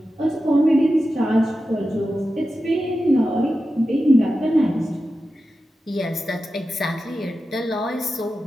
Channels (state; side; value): normal; both; correlation 0.92